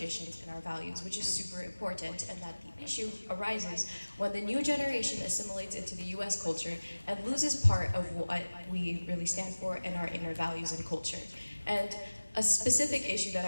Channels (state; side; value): inverted; both; correlation -1.00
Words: and our values, which is super important, and that the issue arises when the new generation assimilates into the US culture and loses part of what we really stand for and our inner values and culture. And a specific issue that